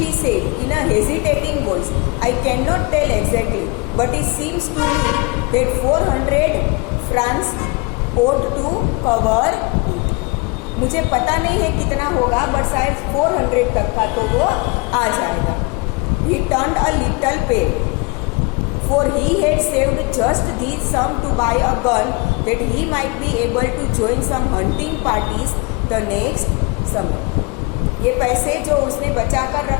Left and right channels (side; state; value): right; quieter; 28.1 dB